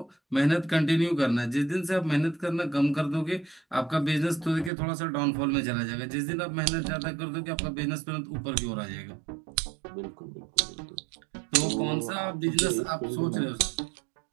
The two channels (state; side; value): drops out; left; at 4.7 s